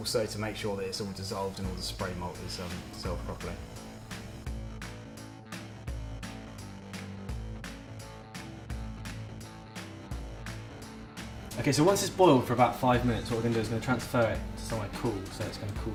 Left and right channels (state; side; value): identical; both; correlation 1.00